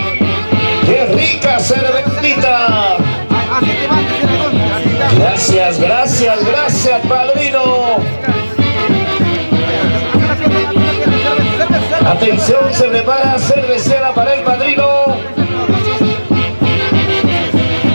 qué rica cervecita. Gracias, gracias, gracias, padrino. Atención, se prepara cervecera para el padrino.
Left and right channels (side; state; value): both; inverted; correlation -1.00